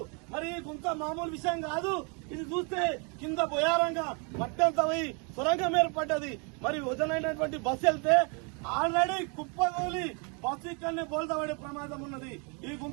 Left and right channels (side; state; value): left; quieter; 34.7 dB